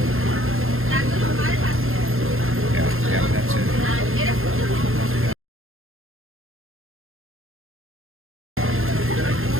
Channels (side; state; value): left; late; 0.60 ms